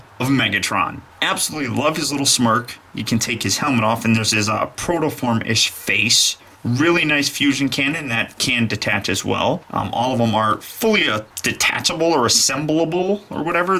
of Megatron. Absolutely love his little smirk. You can take his helmet off and there's his protoform-ish face. Really nice fusion cannon that can detach as well. All of them are fully detachable or assemblable or whatever.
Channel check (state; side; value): identical; both; correlation 1.00